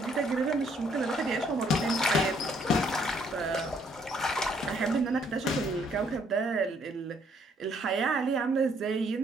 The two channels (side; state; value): both; normal; correlation 0.67